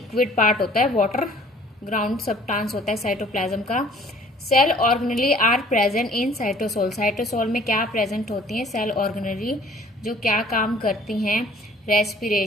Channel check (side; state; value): both; normal; correlation 0.54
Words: पार्ट होता है, वाटर ग्राउंड सब्सटेंस होता है साइटोप्लाज्म का। Cell organelle are present in cytosol. Cytosol में क्या प्रेजेंट होती हैं? सेल ऑर्गेनेली, जो क्या काम करती हैं?